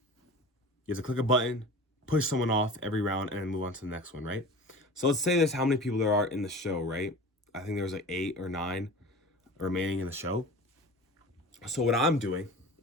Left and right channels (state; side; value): normal; both; correlation 0.37